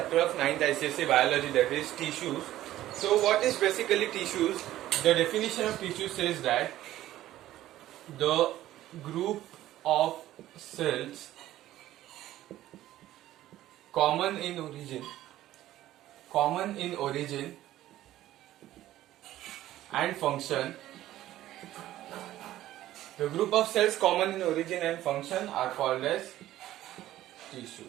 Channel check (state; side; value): quieter; left; 14.2 dB